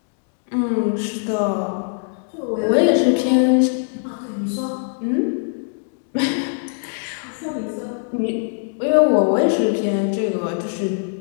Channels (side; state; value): right; silent; digital silence